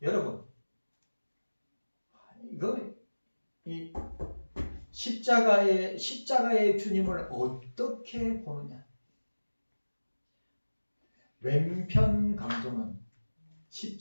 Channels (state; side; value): inverted; both; correlation -1.00